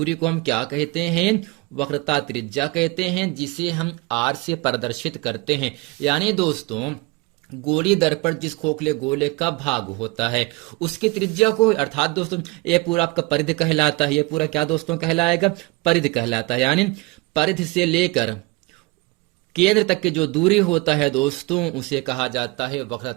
को हम क्या कहते हैं, वक्रता त्रिज्या कहते हैं, जिसे हम आर से प्रदर्शित करते हैं। यानी दोस्तों गोली दर्पण जिस खोखले गोले का भाग होता है उसकी त्रिज्या को, अर्थात दोस्तों ये पूरा आपका परिधि कहलाता है, ये पूरा क्या दोस्तों कहलाएगा, परिधि कहलाता है। यानी परिधि से लेकर केंद्र तक की जो दूरी होता है दोस्तों उसे कहा जाता है वक्रता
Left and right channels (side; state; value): left; quieter; 24.1 dB